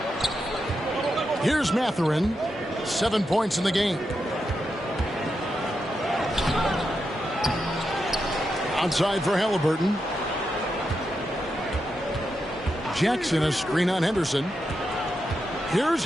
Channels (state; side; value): normal; both; correlation 0.86